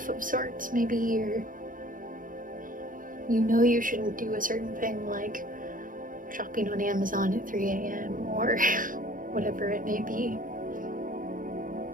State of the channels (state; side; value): late; left; 0.40 ms